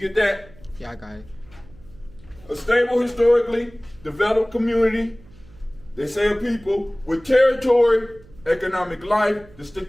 that? Yeah, I got it. A stable, historically developed community, they say a people, with territory, economic life,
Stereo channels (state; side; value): noise; right; hum, 24 dB below the sound